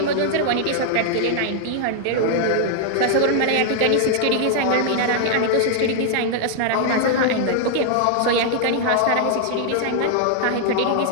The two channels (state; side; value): different; both; correlation 0.00